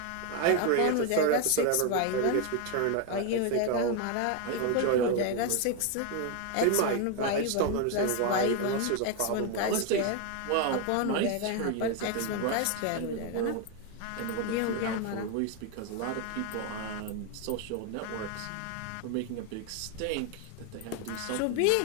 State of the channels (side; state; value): both; different; correlation 0.01